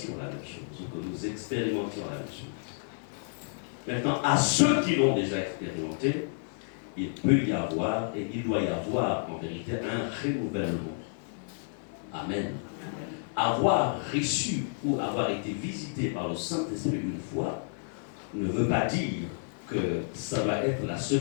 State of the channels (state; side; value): silent; right; digital silence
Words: la même chose, ou que nous expérimentions la même chose. Maintenant, à ceux qui l'ont déjà expérimenté, il peut y avoir, et il doit y avoir en vérité, un renouvellement. Amen. Avoir reçu ou avoir été visité par le Saint-Esprit une fois ne veut pas dire que ça va être la